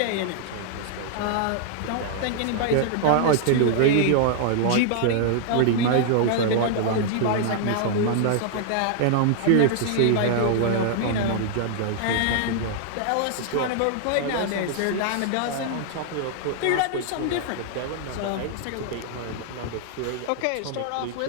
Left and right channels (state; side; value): different; both; correlation -0.01